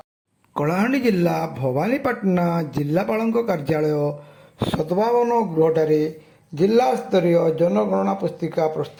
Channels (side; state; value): both; identical; correlation 1.00